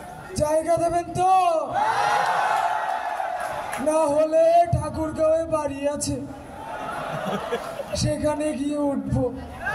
জায়গা দেবেন তো? না হলে ঠাকুরগাঁওয়ে বাড়ি আছে, সেখানে গিয়ে উঠবো।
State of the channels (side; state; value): both; identical; correlation 1.00